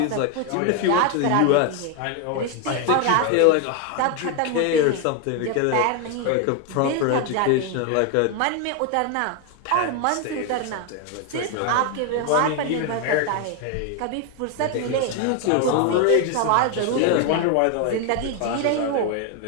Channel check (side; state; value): both; different; correlation 0.01